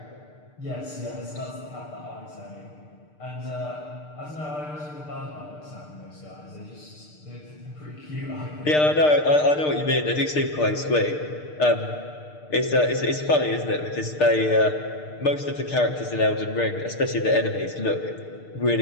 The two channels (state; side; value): late; right; 6.6 ms